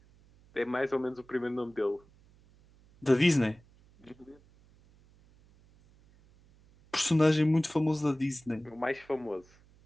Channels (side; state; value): right; noise; hum, 29 dB below the sound